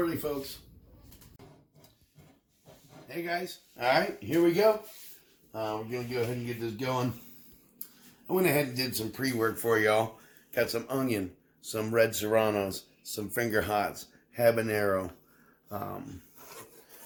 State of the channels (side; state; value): both; identical; correlation 1.00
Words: folks. Hey guys, alright, here we go. We're going to go ahead and get this going. I went ahead and did some pre-work for y'all. Got some onion, some red serranos, some finger hots, habanero,